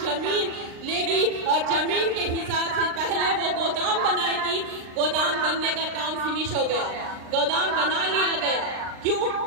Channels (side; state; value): left; late; 39 ms